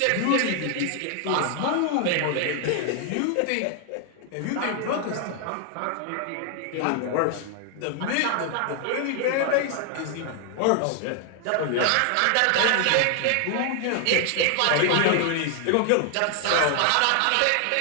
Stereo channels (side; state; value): both; different; correlation 0.00